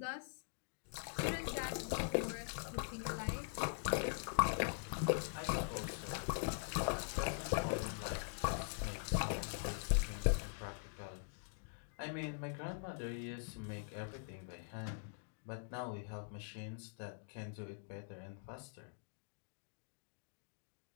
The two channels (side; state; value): right; silent; digital silence